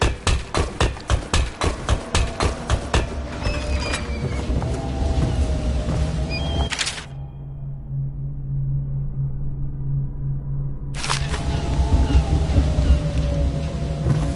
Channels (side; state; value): both; identical; correlation 1.00